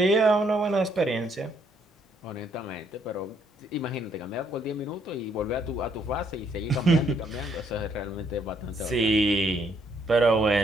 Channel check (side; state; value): both; normal; correlation 0.70